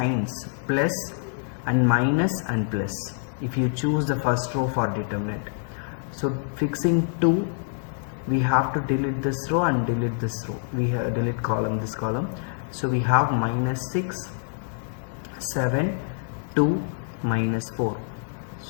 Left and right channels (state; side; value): silent; right; digital silence